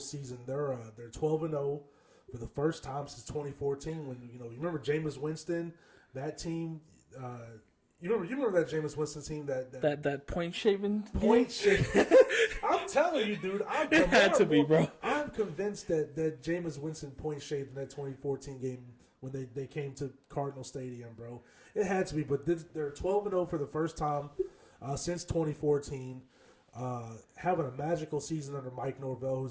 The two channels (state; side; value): identical; both; correlation 1.00